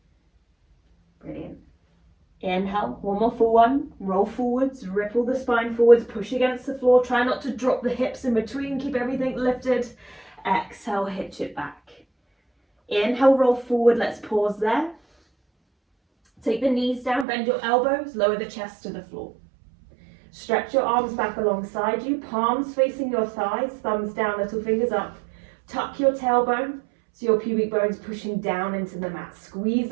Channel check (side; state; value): left; drops out; at 17.2 s